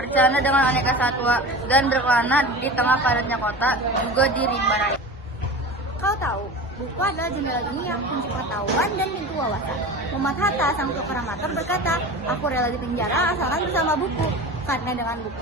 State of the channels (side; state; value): both; normal; correlation 0.32